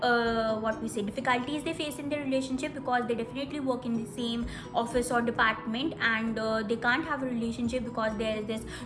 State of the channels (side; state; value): both; identical; correlation 1.00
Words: what we say difficulties they face in their relationship, because they definitely work in the same office or department, and they can't have a relationship because there is this